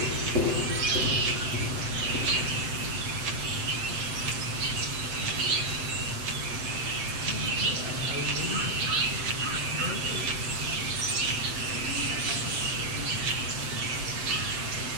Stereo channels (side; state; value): left; late; 7.8 ms